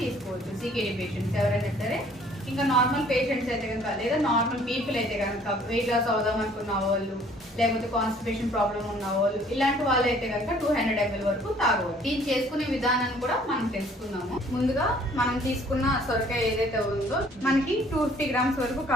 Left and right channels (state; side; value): normal; both; correlation 0.57